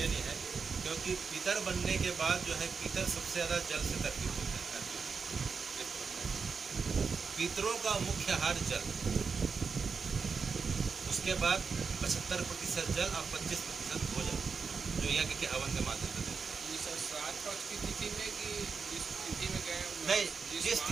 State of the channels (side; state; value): left; quieter; 5.4 dB